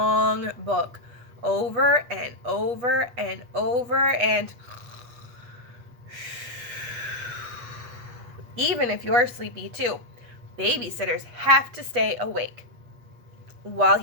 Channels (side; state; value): left; late; 8.3 ms